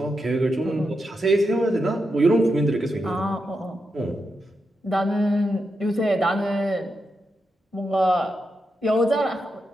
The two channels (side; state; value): both; normal; correlation 0.86